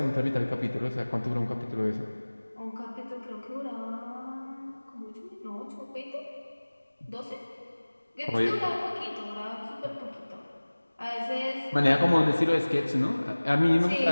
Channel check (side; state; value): both; inverted; correlation -1.00